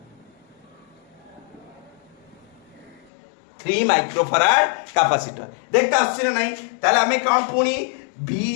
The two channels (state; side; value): drops out; right; at 3.1 s